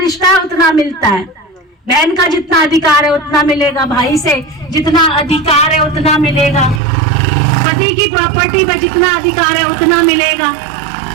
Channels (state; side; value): drops out; left; at 6.8 s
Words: है उतना मिलता है। बहन का जितना अधिकार है उतना मिलेगा, भाई से जितना अधिकार है उतना मिलेगा, पति की प्रॉपर्टी पर जितना अधिकार है उतना मिलेगा,